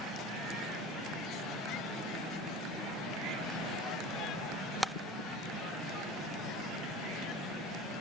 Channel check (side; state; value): both; normal; correlation 0.38